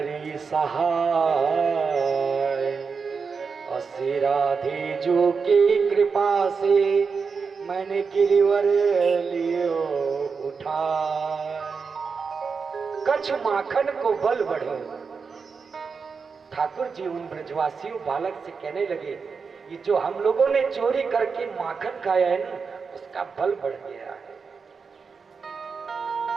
सहाय, और श्री राधे जो की कृपा से मैंने गिरिवर लियो उठाए। कछु माखन को बल बढ़ो। ठाकुर जी उन ब्रजवासियों बालक से कहने लगे, ये जो हम लोगों ने चोरी करके माखन खाया है ना, उसका बल बढ़ गया है।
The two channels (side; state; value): left; quieter; 5.3 dB